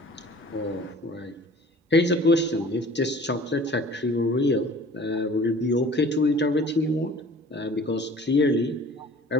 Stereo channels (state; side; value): normal; both; correlation 0.47